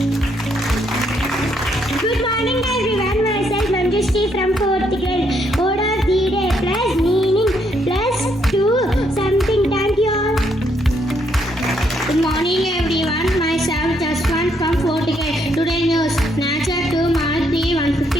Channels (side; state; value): both; normal; correlation 0.73